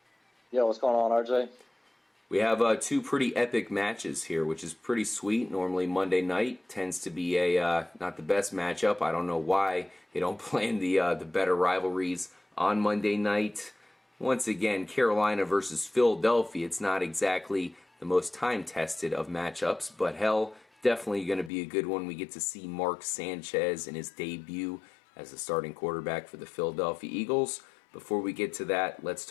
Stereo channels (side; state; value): right; drops out; at 21.5 s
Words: Yo, what's going on, RJ? We have two pretty epic matches here, which is pretty sweet. Normally Monday night tends to be not the best matchup. I don't know why they don't plan the better rivalries on Monday night. Once again, Carolina versus Philadelphia. It's not exactly the most time-tested of matchups, but hell, definitely going to be a good one. We get to see Mark Sanchez in his debut as the starting quarterback for the Philadelphia Eagles. Before we get to that, let's